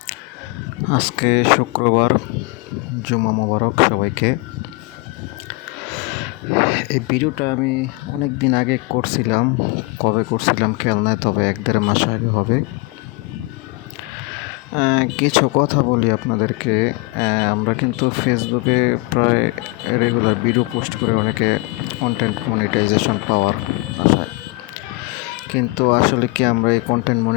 আজকে শুক্রবার, জুমা মোবারক সবাইকে। এই ভিডিওটা আমি অনেক দিন আগে করছিলাম। কবে করছিলাম খেয়াল নাই, তবে 1-1.5 মাস আগে হবে। কিছু কথা বলি আপনাদেরকে। আমরা কিন্তু ফেসবুকে প্রায় রেগুলার ভিডিও পোস্ট করে অনেকে কন্টেন্ট মনিটাইজেশন পাওয়ার আশায়, কিন্তু আসলে কি আমরা এই কন্টেন্ট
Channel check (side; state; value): right; quieter; 25.2 dB